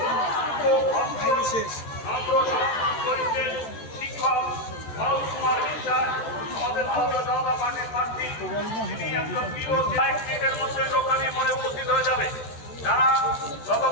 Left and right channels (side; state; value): right; late; 13 ms